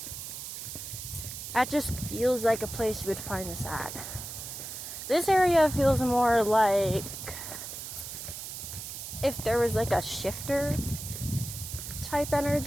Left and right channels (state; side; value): noise; right; hiss, 8 dB below the sound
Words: that just feels like a place you would find this at. This area feels more like if there was like a shifter type